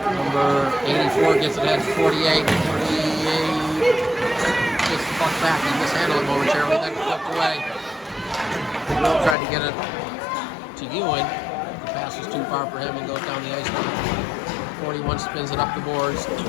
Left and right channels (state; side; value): drops out; right; at 9.3 s